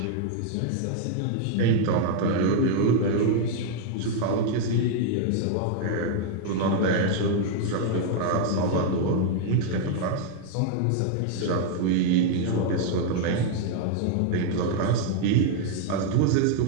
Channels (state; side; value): different; both; correlation 0.00